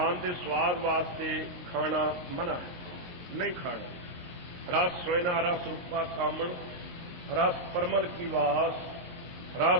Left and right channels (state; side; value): late; left; 22 ms